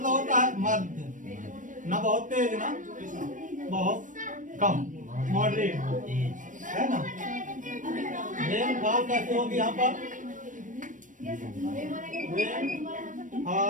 होता है मध्य, ना बहुत तेज ना बहुत कम, मॉडरेट है ना। रेनफॉल कैसे होगी यहाँ पर,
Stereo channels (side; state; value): left; late; 0.38 ms